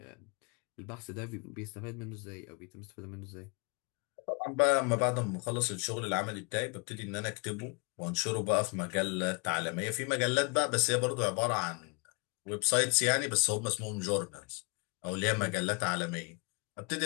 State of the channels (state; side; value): quieter; right; 32.2 dB